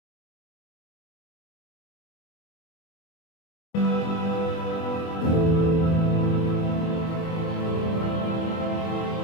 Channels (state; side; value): late; right; 24 ms